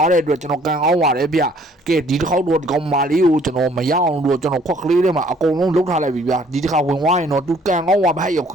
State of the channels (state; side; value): normal; both; correlation 0.59